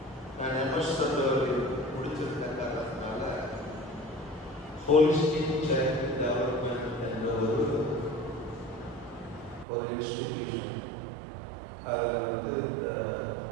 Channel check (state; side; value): drops out; left; at 9.7 s